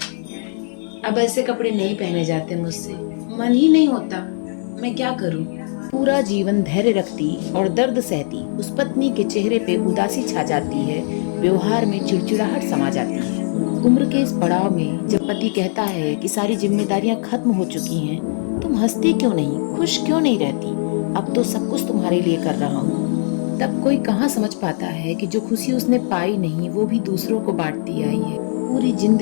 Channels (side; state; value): right; silent; 66 dB below the other